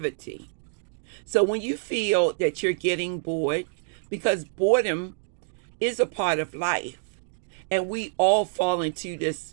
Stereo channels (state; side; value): silent; left; digital silence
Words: So when you feel that you're getting bored, because boredom is a part of life, and we all fall into this